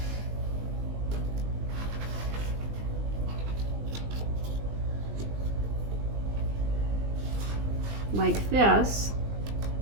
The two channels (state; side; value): late; left; 20 ms